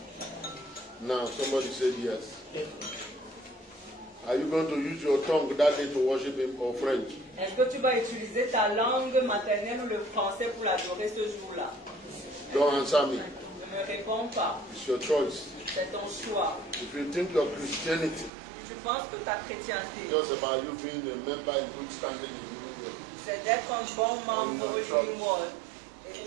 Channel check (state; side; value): drops out; left; at 18.3 s